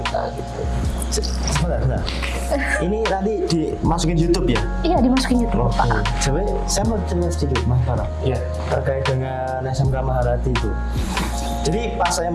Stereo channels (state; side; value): identical; both; correlation 1.00